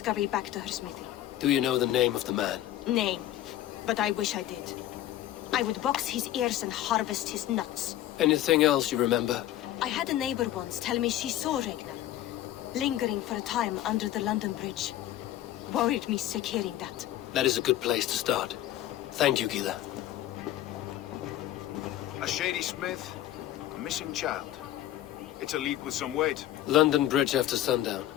back to her smithy. Do you know the name of the man? Name. But I wish I did. I would box his ears and harvest his nuts. Anything else you remember? I had a neighbor once tell me she saw Regna, lingering for a time under the London Bridge. Worried me sick hearing that. That is a good place to start. Thank you, Gila. A shady smith, a missing child. It's a lead with some weight. London Bridge after sundown.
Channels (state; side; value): quieter; right; 13.4 dB